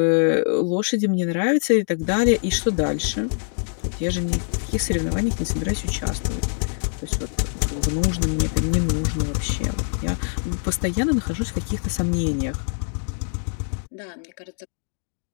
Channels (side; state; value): right; silent; digital silence